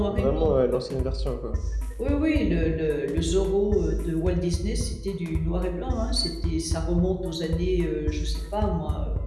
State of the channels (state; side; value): identical; both; correlation 1.00